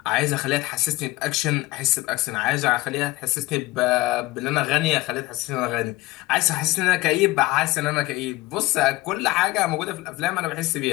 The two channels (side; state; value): right; quieter; 19.6 dB